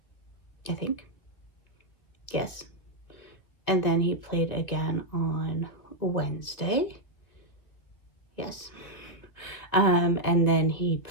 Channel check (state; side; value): late; right; 2.1 ms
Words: I think. Yes. And then he played again on Wednesday. Yes. And then he